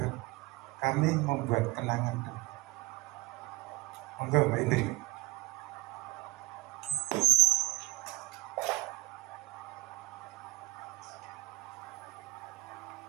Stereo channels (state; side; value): quieter; left; 20.2 dB